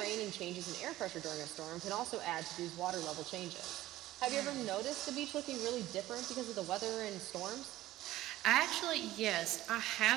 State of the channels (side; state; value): left; quieter; 15.6 dB